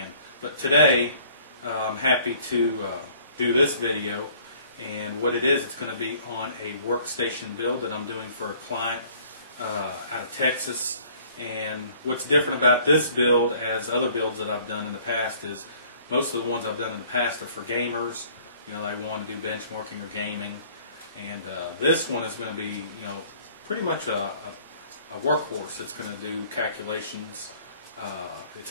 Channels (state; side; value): inverted; both; correlation -0.56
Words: But today, I'm happy to do this video, and what it is, it's going to be on a workstation build that I'm doing for a client out of Texas. And what's different about this build as other builds that I've done in the past is most of the ones I've done in the past are for gamers. They want to do benchmarking or gaming. And this one is going to be, pretty much a workhorse. It's going to do calculations.